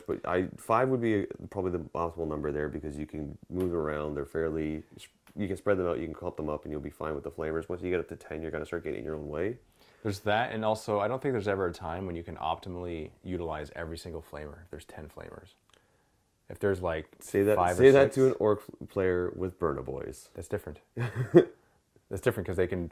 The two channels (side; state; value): both; identical; correlation 1.00